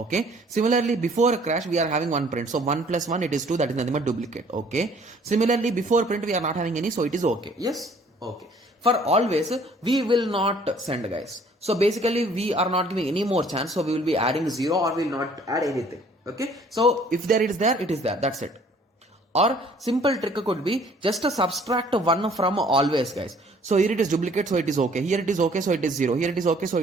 Similarly, before crash, we are having one print. So 1 plus 1, it is 2. That is nothing but duplicate. Okay. Similarly, before print, we are not having any. So it is okay. Yes. Okay. For always, we will not send, guys. So basically, we are not giving any more chance. So we will be adding 0 or we will not add anything. Okay. So if there it is there, it is there. That's it. Or simple trick could be just to subtract 1 from always, guys. So here it is duplicate, so it is okay. Here it is okay, so it is 0. Here it is okay, so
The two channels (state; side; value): normal; both; correlation 0.57